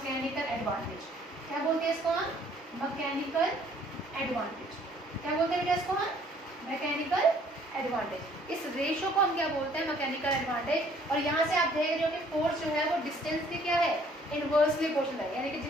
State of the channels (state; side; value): normal; both; correlation 0.60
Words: advantage. क्या बोलते हैं इसको हम, मैकेनिकल एडवांटेज। क्या बोलते हैं बेटा इसको हम, मैकेनिकल एडवांटेज। इस रेशो को हम क्या बोलते हैं, मैकेनिकल एडवांटेज। और यहाँ से आप देख रहे हो कि फोर्स जो है वो डिस्टेंस की क्या है, इनवर्सली प्रोपोर्शनल है, यानी कि